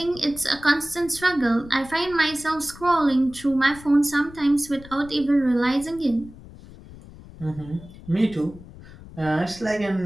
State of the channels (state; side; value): noise; left; rumble, 18 dB below the sound